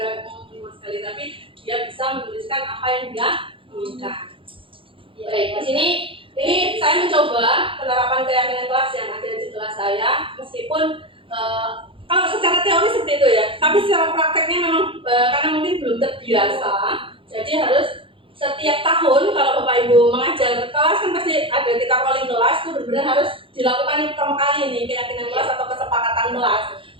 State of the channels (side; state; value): left; late; 0.25 ms